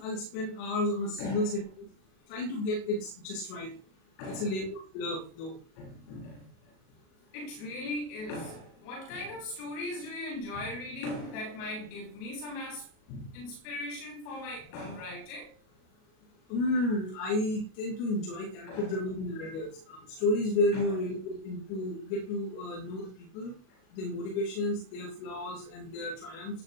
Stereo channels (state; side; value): late; right; 37 ms